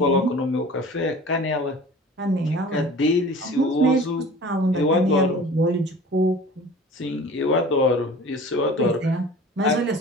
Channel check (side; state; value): both; normal; correlation 0.42